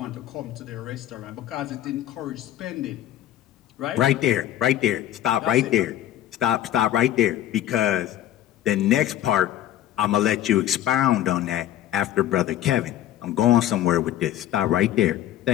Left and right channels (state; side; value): quieter; right; 12.5 dB